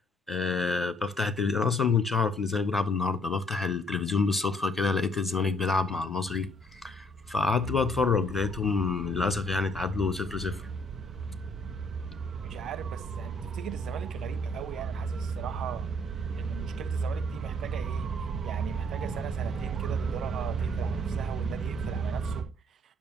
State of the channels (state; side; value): normal; both; correlation 0.64